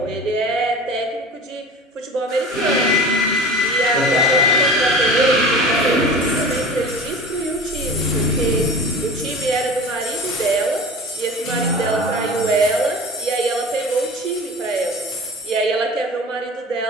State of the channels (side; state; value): both; normal; correlation 0.37